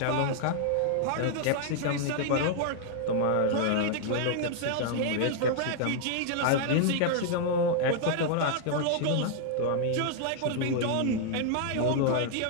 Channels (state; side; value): different; both; correlation 0.00